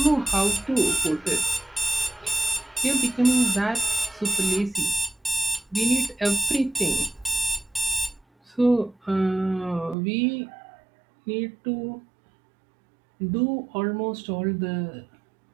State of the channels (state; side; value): drops out; left; at 10.0 s